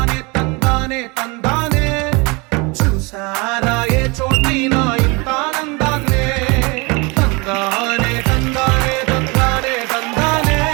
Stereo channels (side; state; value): left; quieter; 27.6 dB